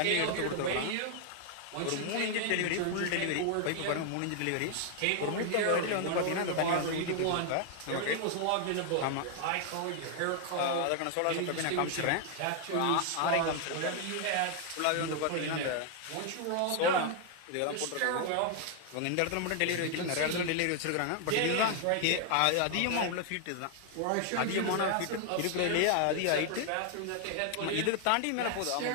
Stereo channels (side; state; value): both; different; correlation 0.00